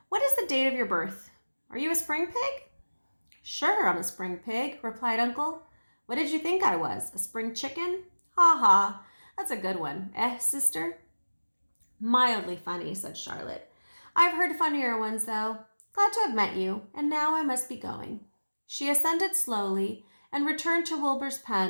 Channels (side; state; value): both; inverted; correlation -1.00